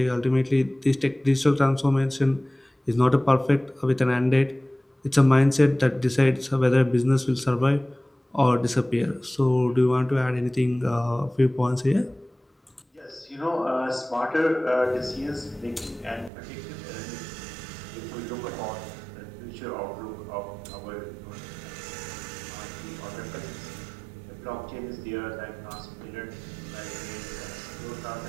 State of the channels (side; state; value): left; drops out; at 16.3 s